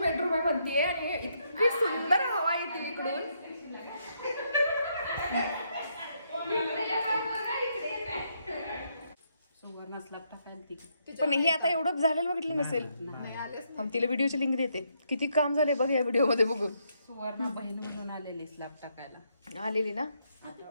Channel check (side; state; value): both; inverted; correlation -0.76